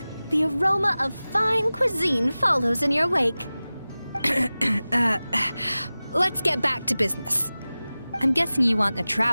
the aroma of fine cuisine follows in your wake. Let's get back to business. I'm guessing you want the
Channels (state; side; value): inverted; both; correlation -0.97